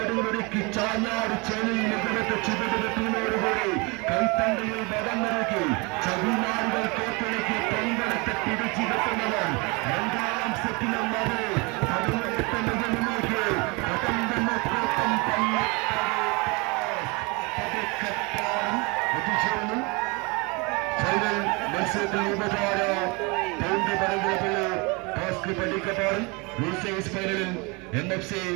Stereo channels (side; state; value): left; quieter; 28.4 dB